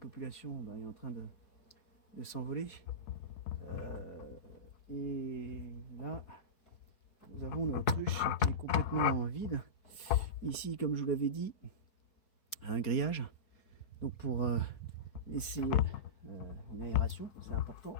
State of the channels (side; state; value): right; late; 4.7 ms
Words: est en train de s'envoler. Et là, nous avons notre ruche qui est complètement vide. Ici, comme je vous l'avais dit, un grillage. Donc pour laisser une aération, c'est important